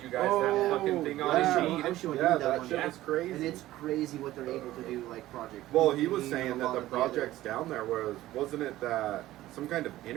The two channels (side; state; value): left; quieter; 15.5 dB